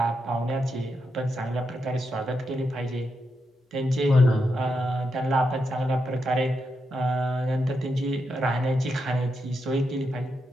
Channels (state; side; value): normal; both; correlation 0.84